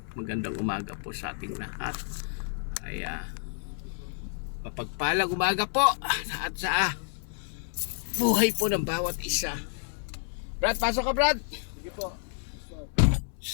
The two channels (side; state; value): right; silent; 58 dB below the other